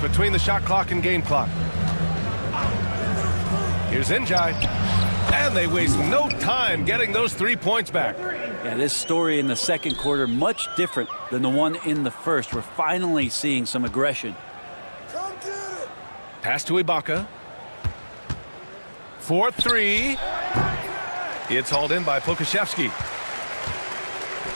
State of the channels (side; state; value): both; inverted; correlation -1.00